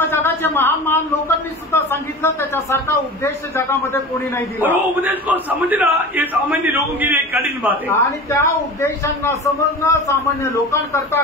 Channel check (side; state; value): both; normal; correlation 0.33